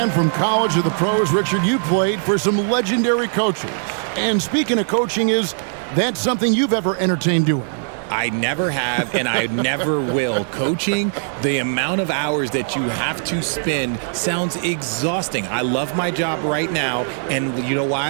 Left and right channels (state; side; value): silent; left; digital silence